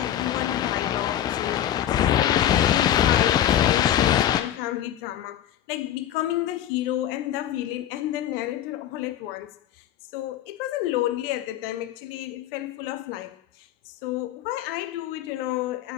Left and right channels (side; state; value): right; quieter; 11.3 dB